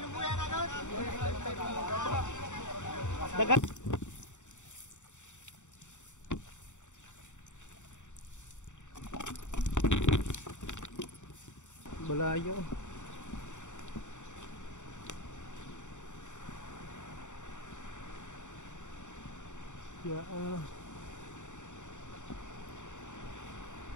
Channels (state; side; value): late; right; 0.85 ms